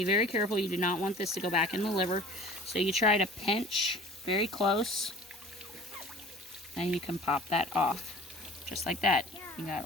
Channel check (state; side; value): normal; both; correlation 0.45